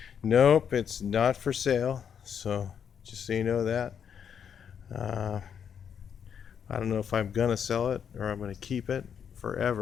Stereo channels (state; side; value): quieter; right; 7.8 dB